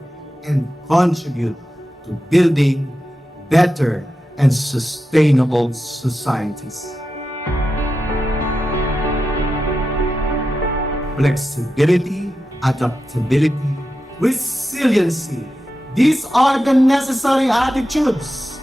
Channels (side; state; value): both; normal; correlation 0.90